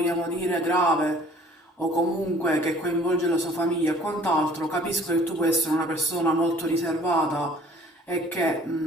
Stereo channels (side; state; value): both; normal; correlation 0.53